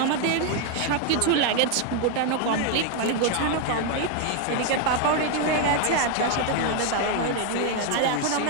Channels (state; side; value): different; both; correlation 0.01